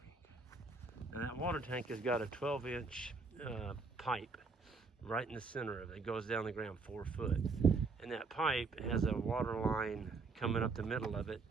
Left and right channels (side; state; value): left; quieter; 4.2 dB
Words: Now that water tank has got a 12-inch pipe right in the center of it. It goes down the ground 4 foot. And that pipe has a water line coming up the middle of it